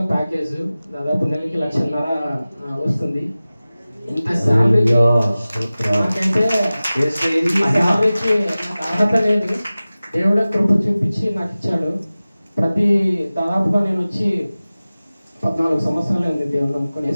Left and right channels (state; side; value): inverted; both; correlation -0.97